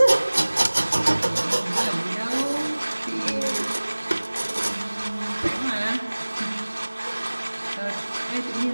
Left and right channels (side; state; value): both; inverted; correlation -1.00